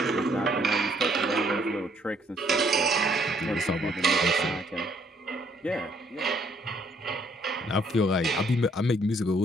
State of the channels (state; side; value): normal; both; correlation 0.67